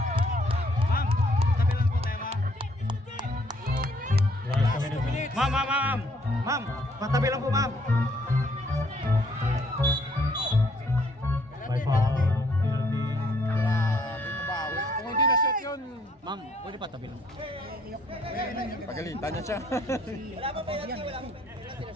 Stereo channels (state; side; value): normal; both; correlation 0.65